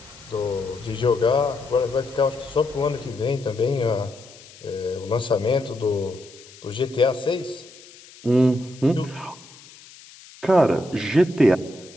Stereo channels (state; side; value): noise; left; hiss, 21 dB below the sound